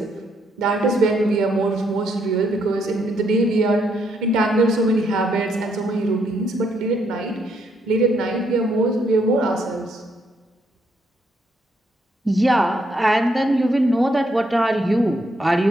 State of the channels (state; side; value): normal; both; correlation 0.74